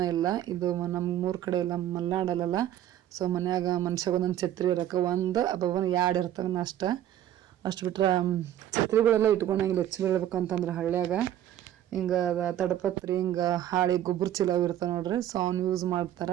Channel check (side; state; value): left; quieter; 11.7 dB